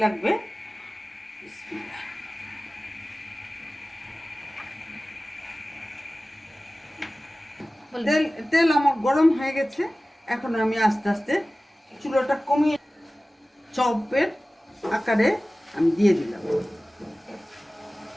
লাগবে। তেল তেল আমার গরম হয়ে গেছে, এখন আমি আস্তে আস্তে চুলাটা কমিয়ে চপের আকারে আমি দিয়ে দিলাম।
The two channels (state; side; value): normal; both; correlation 0.97